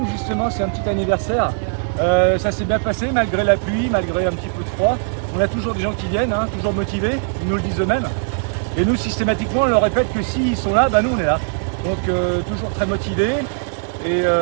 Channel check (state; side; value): silent; left; digital silence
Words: justement, c'est un petit anniversaire. Ça s'est bien passé malgré la pluie, malgré un petit peu de froid. On a toujours des gens qui viennent, hein, toujours motivés, ils nous le disent eux-mêmes. Et nous systématiquement on leur répète que s'ils sont là, nous on est là. Donc toujours très motivés. Et